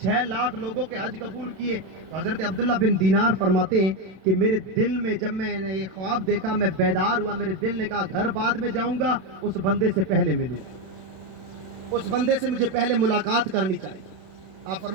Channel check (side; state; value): left; late; 32 ms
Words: लाख लोगों के हज कबूल किए। तो हजरत अब्दुल्ला बिन दीनार फरमाते हैं कि मेरे दिल में जब मैंने ये ख्वाब देखा, मैं बेदार हुआ, मेरे दिल ने कहा घर बाद में जाऊंगा, उस बंदे से पहले मिलूं, उस बंदे से मुझे पहले मुलाकात करनी चाहिए। आप